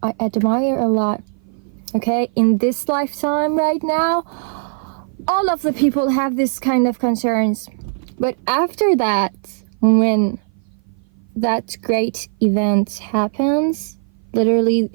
I admire a lot. Okay, in this lifetime right now, all of the people have this kind of concerns. But after that, when that great event happens, literally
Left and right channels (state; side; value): silent; left; 56 dB below the other